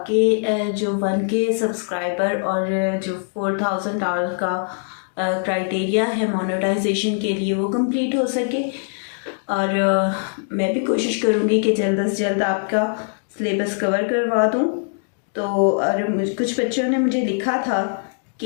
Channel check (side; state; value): right; silent; digital silence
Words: جو 1K سبسکرائبر اور جو 4000 ڈالر کا کرائٹیریا ہے مونیٹائزیشن کے لیے وہ کمپلیٹ ہو سکے۔ اور میں بھی کوشش کروں گی کہ جلد از جلد آپ کا سلیبس کور کروا دوں۔ تو اور کچھ بچوں نے مجھے لکھا تھا